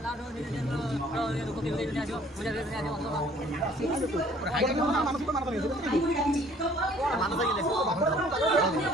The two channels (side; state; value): both; normal; correlation 0.57